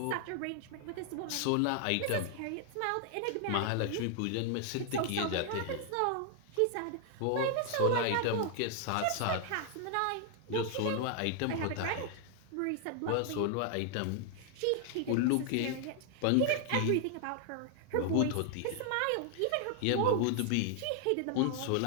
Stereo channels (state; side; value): different; both; correlation 0.00